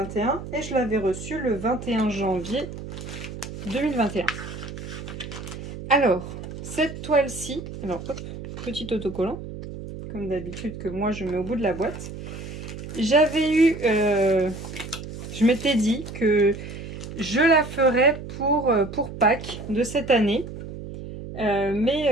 et je l'avais reçue le 21 janvier 2021. Alors, cette toile-ci, alors hop, petit autocollant, comme d'habitude que moi je mets au bout de la boîte. J'avais eu, je m'étais dit que je la ferais pour Pâques de cette année.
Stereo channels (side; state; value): right; noise; hum, 10 dB below the sound